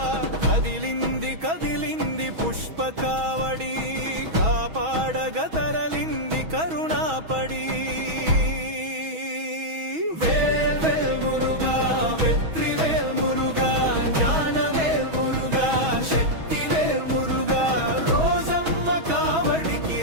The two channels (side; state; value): left; late; 6.2 ms